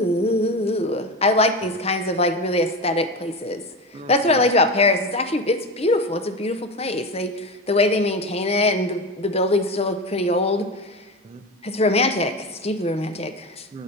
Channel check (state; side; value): normal; both; correlation 0.22